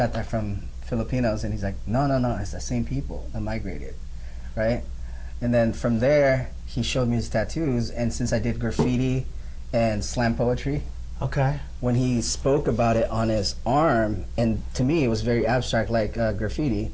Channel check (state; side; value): identical; both; correlation 1.00